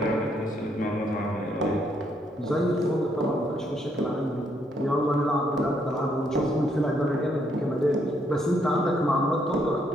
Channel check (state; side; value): normal; both; correlation 0.73